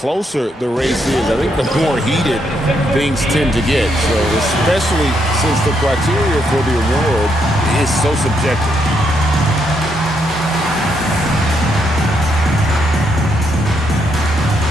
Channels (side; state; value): both; normal; correlation 0.77